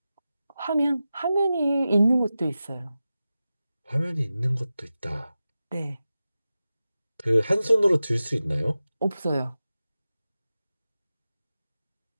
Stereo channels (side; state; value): both; inverted; correlation -0.94